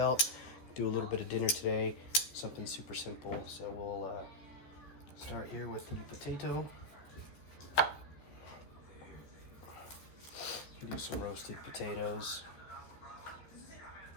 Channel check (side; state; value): right; late; 13 ms